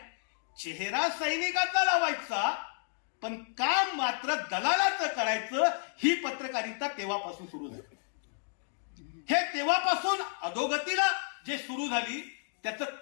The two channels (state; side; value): silent; right; digital silence